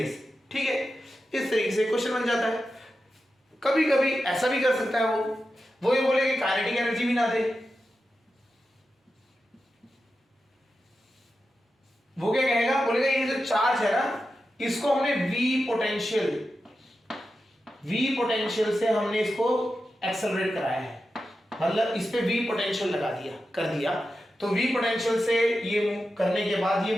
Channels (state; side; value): normal; both; correlation 0.90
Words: ठीक है, इस तरीके से क्वेश्चन बन जाता है। कभी कभी ऐसा भी कर सकता है वो ये बोले कि काइनेटिक एनर्जी भी ना दे, वो क्या कहेगा, बोलेगा ये जो चार्ज है ना इसको हमने V पोटेंशियल से हमने इसको एक्सेलरेट कराया है, मतलब इस पे V पोटेंशियल लगा दिया कर दिया, तो V पोटेंशियल से ये मूव करने के बाद ये